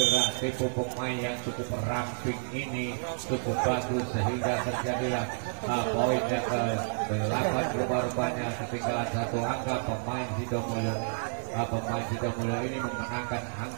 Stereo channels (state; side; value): silent; left; digital silence